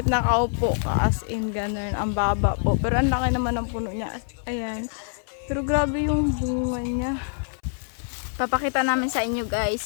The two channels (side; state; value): right; silent; 62 dB below the other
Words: nakaupo ka, as in ganun. Ang baba po. Pero ang laki naman ng puno niya. Ayan. Pero grabe yung bunga niya. Papakita namin sa inyo